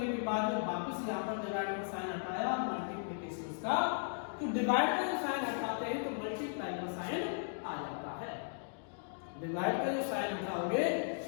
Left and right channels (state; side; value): silent; right; digital silence